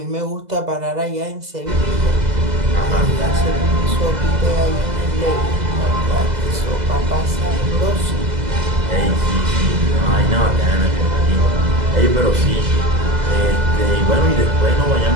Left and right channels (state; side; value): late; left; 2.0 ms